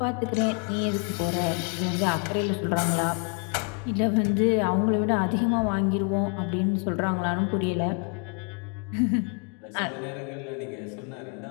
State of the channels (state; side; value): quieter; right; 39.1 dB